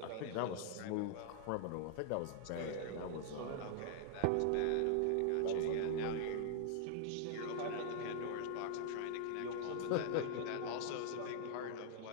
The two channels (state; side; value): different; both; correlation -0.01